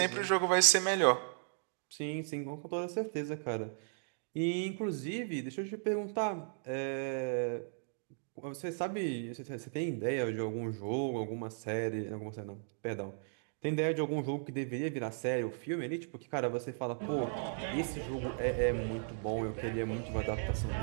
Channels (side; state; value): left; silent; digital silence